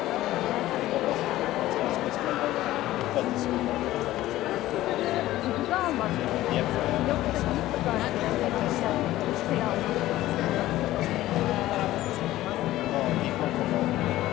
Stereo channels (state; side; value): quieter; right; 15.5 dB